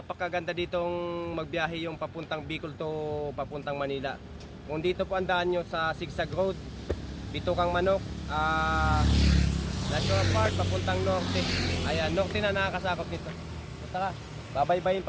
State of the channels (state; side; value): identical; both; correlation 1.00